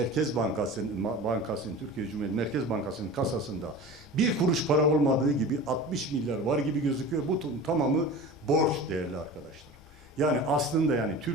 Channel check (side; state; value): both; normal; correlation 0.35